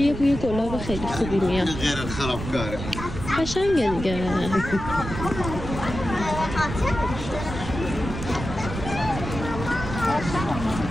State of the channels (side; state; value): right; noise; rumble, 7 dB below the sound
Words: یه بوی گلاب خیلی خوبی میاد، قشنگه دیگه.